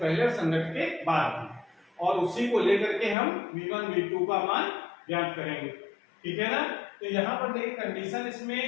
और संघट्ट के बाद, और उसी को लेकर के हम V1 V2 का मान ज्ञात करेंगे। ठीक है ना। तो यहाँ पर देखिए कंडीशन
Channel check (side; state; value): right; drops out; at 3.2 s